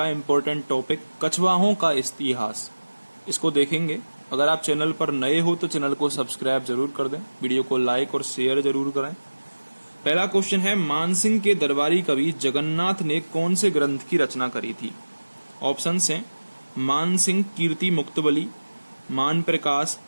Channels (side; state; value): both; inverted; correlation -1.00